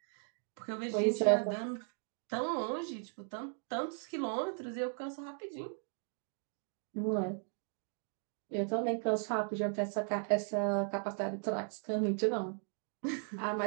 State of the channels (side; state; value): left; silent; 53 dB below the other